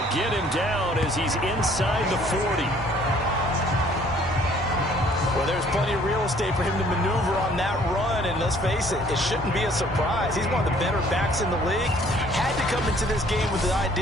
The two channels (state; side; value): normal; both; correlation 0.58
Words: Get him down as he's inside the 40. Well, there's plenty of real estate for him to maneuver on that run, and let's face it, it shouldn't be a surprise. He's one of the better backs in the league. Had to come into this game with the